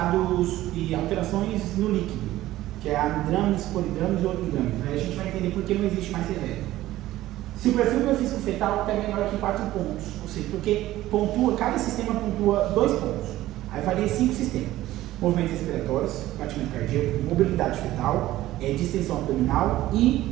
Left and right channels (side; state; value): left; quieter; 15.4 dB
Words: e alterações no líquido, que é amidrames, polidrames e oligodrames. Aí a gente vai entender por que não existe mais severo. Se o perfil biofísico fetal é menor que 4 pontos, ou seja, porque cada sistema pontua 2 pontos, aí varia 5 sistemas: movimentos respiratórios, batimento cardíaco, mobilidade fetal, distensão abdominal